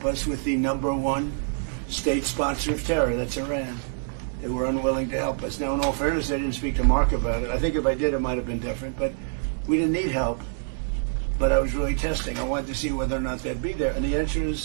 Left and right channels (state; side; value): silent; left; 61 dB below the other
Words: us with the #1 state sponsor of terror, that's Iran. They were unwilling to help us. Now, in all fairness, I didn't speak to Mark about it. I think if I did, it might have been different, but we didn't need help. But I was really testing. I wanted to see whether or not they'd be there. And the answer